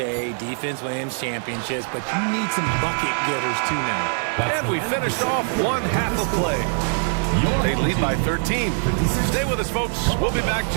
defense wins championships, but you need some bucket getters too now. And we finished off one half of play. They lead by 13. Stay with us, folks. We'll be back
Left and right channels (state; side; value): silent; left; 58 dB below the other